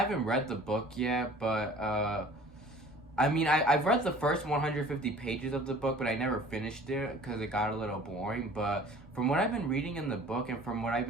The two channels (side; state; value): both; normal; correlation 0.47